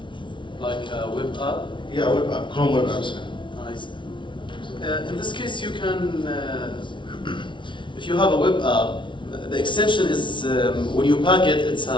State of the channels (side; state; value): right; late; 0.24 ms